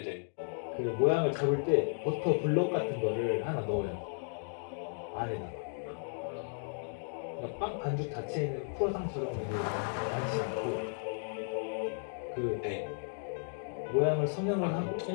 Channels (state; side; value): silent; right; 55 dB below the other